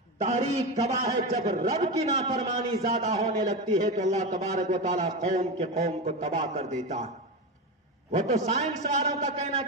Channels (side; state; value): both; normal; correlation 0.18